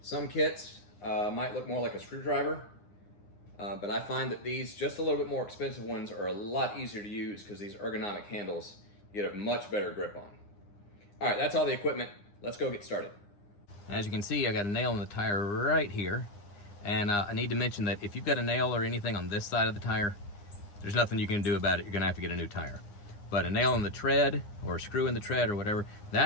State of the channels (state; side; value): late; right; 9.8 ms